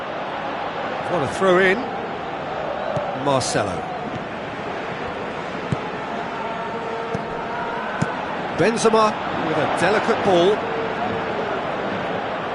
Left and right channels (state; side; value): identical; both; correlation 1.00